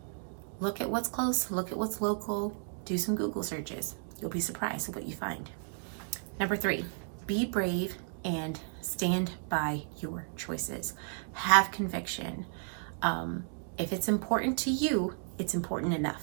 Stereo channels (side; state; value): left; silent; 56 dB below the other